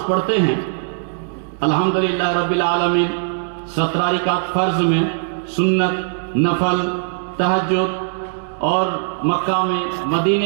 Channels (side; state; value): left; silent; digital silence